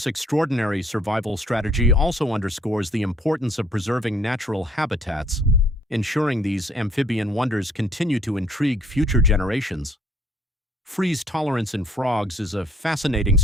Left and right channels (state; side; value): normal; both; correlation 0.62